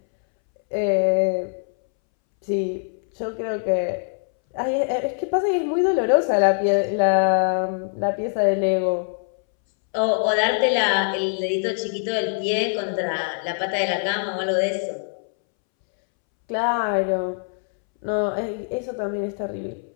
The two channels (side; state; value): right; silent; 63 dB below the other